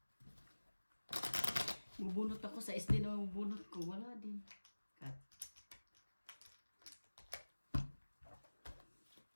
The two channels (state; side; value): inverted; both; correlation -1.00